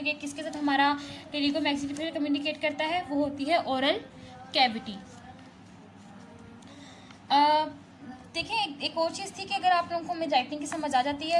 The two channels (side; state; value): both; identical; correlation 1.00